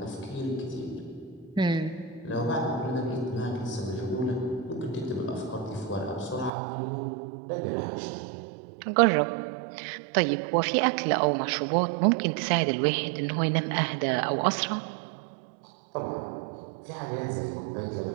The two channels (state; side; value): drops out; left; at 6.5 s